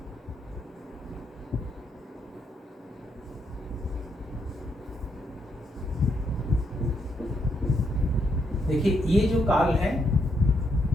देखिए, ये जो काल है,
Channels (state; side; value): normal; both; correlation 0.77